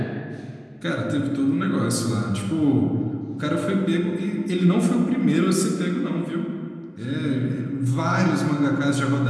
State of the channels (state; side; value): identical; both; correlation 1.00